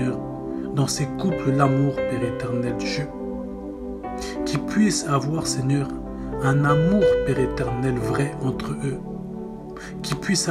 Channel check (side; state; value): both; identical; correlation 1.00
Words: dans ces couples l'amour, Père éternel Dieu. Qu'ils puissent avoir, Seigneur, un amour, Père éternel, vrai entre eux. Qu'ils puissent